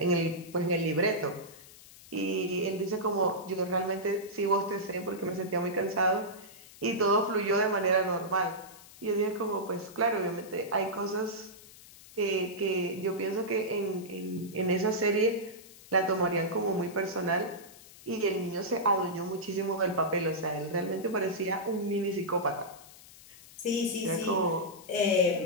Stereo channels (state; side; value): noise; left; hiss, 20 dB below the sound